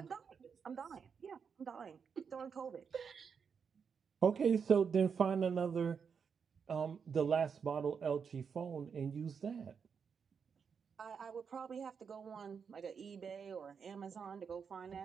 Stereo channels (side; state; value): left; quieter; 6.4 dB